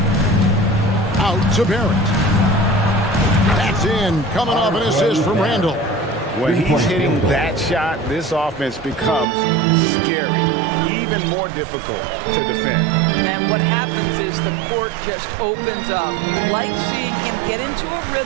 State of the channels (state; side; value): drops out; left; at 9.2 s